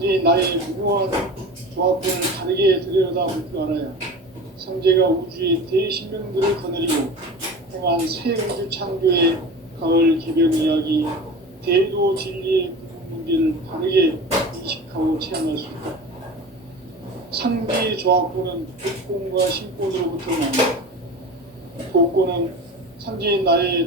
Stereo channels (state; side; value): normal; both; correlation 0.33